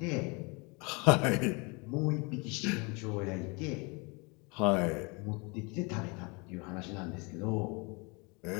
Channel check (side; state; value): right; quieter; 29.7 dB